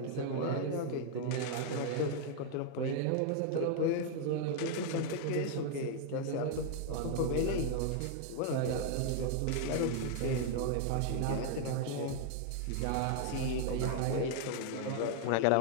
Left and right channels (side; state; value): both; different; correlation 0.00